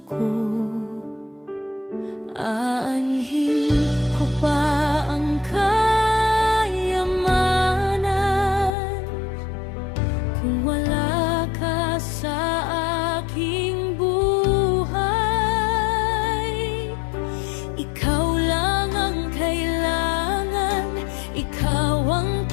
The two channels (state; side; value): drops out; right; at 8.8 s